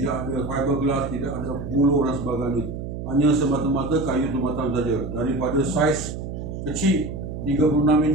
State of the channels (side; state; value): right; noise; hum, 7 dB below the sound